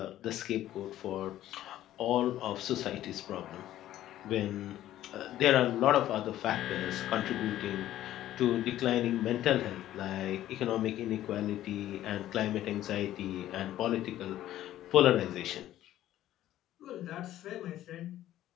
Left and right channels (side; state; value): right; quieter; 13.3 dB